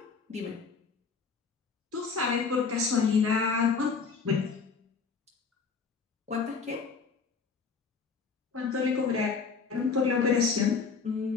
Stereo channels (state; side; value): quieter; right; 5.2 dB